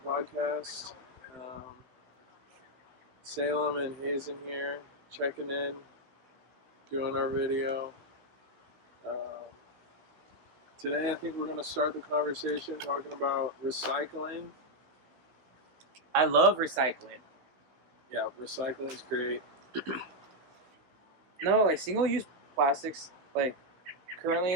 podcast. Salem and Hazen here, checking in, doing our video. Um, Today, I think we're going to start the conversation talking about recycling. I love recycling. Yeah, recycling is great. No, like single-use plastics, like currently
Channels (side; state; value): left; late; 16 ms